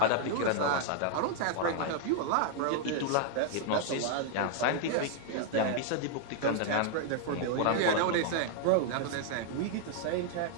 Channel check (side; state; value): both; different; correlation -0.01